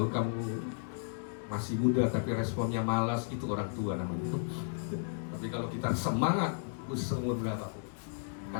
kamu masih muda tapi responnya malas, itu orang tua namanya. Tapi kalau kita semangat, umur berapapun,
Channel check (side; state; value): right; silent; digital silence